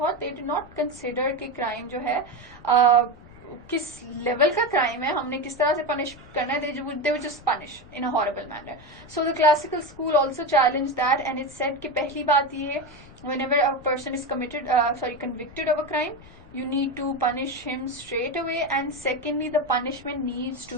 they did not consider कि crime जो है किस level का crime है, हमने किस तरह से पनिश करना है. they would just punish in a horrible manner. So the classical school also challenged that, and it said कि पहली बात ये, whenever a person is convicted of a crime, you need to punish him straight away, and secondly the punishment needs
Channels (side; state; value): left; noise; rumble, 21 dB below the sound